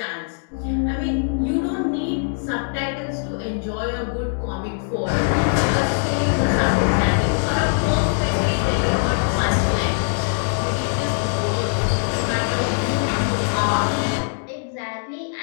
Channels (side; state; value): right; silent; digital silence